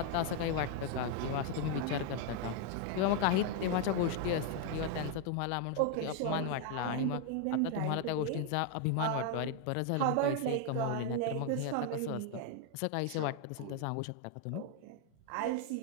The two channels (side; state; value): both; different; correlation 0.00